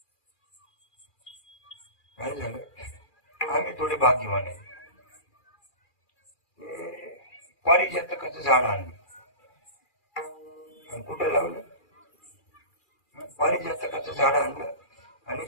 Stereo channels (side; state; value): right; late; 2.4 ms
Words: काय झालं, आम्ही थोडे भाग्यवान आहे. पारिजातकाचं झाड आणलं आणि कुठं लावलं? पारिजातकाचं झाड आणलं आणि